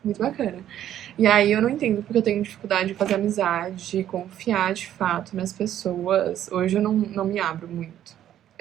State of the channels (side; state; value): left; quieter; 11.3 dB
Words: muito bacana. E aí eu não entendo porque eu tenho dificuldade de fazer amizade, de confiar de fato nas pessoas. Hoje eu não me abro muito.